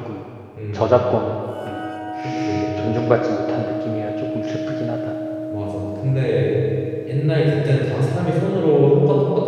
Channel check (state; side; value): identical; both; correlation 1.00